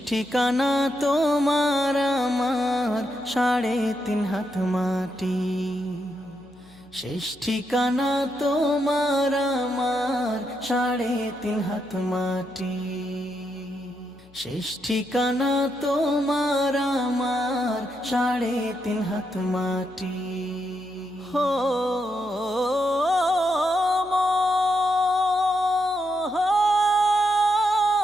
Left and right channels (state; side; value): noise; left; hum, 27 dB below the sound